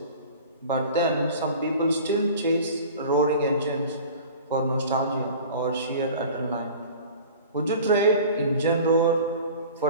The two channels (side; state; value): both; inverted; correlation -0.41